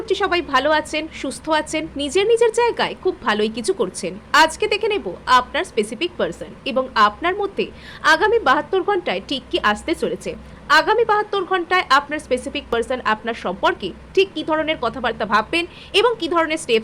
সবাই ভালো আছেন, সুস্থ আছেন, নিজের নিজের জায়গায় খুব ভালোই কিছু করছেন। আজকে দেখে নেব আপনার স্পেসিফিক পার্সন এবং আপনার মধ্যে আগামী 72 ঘন্টায় ঠিক কি আসতে চলেছে। আগামী 72 ঘন্টায় আপনার স্পেসিফিক পার্সন আপনার সম্পর্কে ঠিক কী ধরনের কথাবার্তা ভাববেন এবং কী ধরনের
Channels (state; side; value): identical; both; correlation 1.00